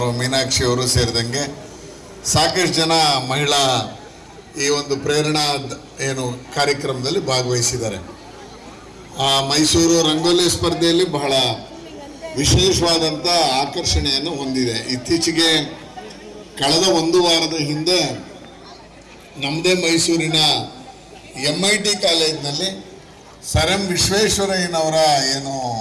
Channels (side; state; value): both; identical; correlation 1.00